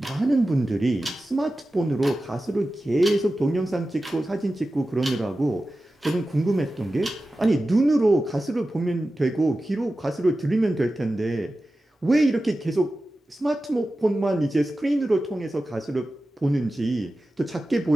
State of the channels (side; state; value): both; normal; correlation 0.94